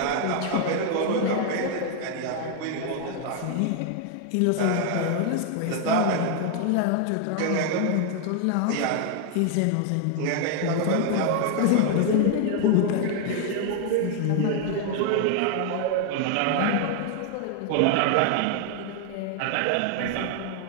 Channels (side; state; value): both; different; correlation 0.00